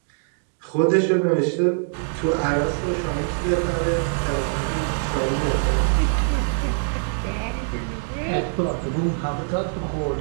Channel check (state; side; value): silent; left; digital silence